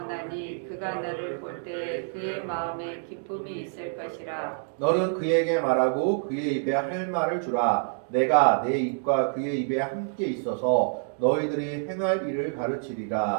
그가 너를 볼 때 그의 마음에 기쁨이 있을 것이라. 너는 그에게 말하고 그의 입에 할 말을 주라. 내가 내 입과 그의 입에 함께 있어서 너희들이 행할 일을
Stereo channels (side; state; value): left; silent; digital silence